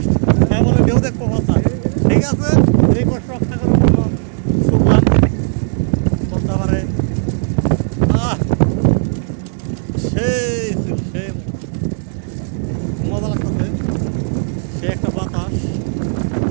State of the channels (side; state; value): left; silent; digital silence